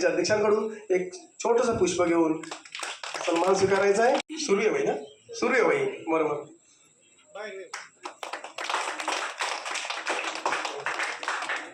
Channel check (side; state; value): both; identical; correlation 1.00